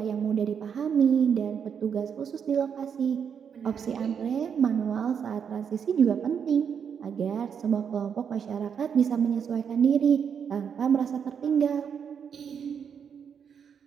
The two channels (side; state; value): left; quieter; 7.3 dB